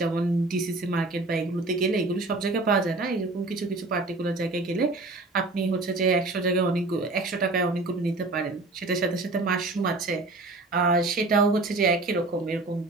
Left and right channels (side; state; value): left; quieter; 3.2 dB